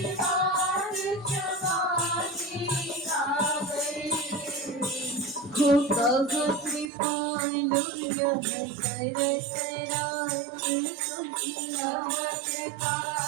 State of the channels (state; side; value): drops out; left; at 6.9 s